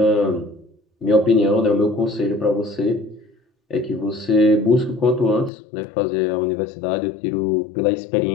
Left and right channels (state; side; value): drops out; right; at 5.5 s